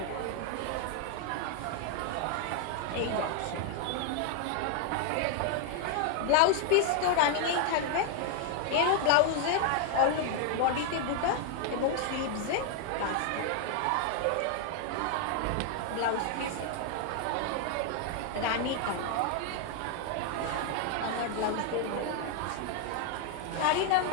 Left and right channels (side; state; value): both; different; correlation 0.00